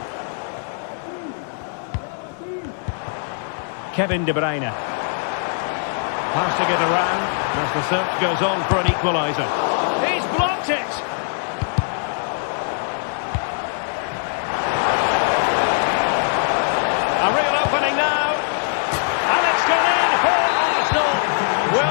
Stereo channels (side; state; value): right; silent; digital silence